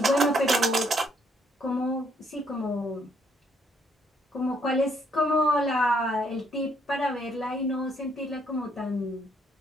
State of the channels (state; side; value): normal; both; correlation 0.69